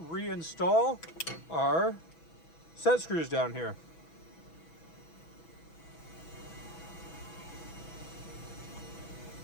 our set screws down here.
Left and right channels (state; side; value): late; right; 6.1 ms